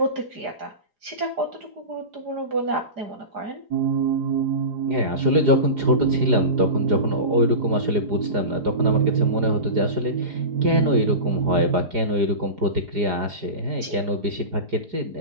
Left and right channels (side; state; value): left; late; 4.9 ms